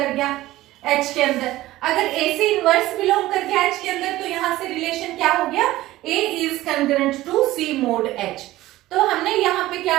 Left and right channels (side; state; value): left; quieter; 16.6 dB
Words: गया H के अंदर। अगर AC इनवर्स बिलोंग कर गया H के अंदर तो यहाँ से रिलेशन क्या हो गया, A is congruent to C mod H। तो हमने यहाँ पे